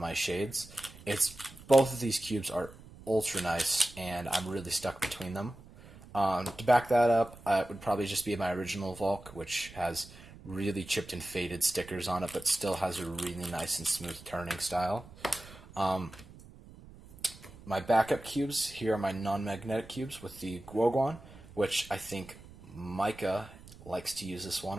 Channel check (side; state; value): right; noise; rumble, 19 dB below the sound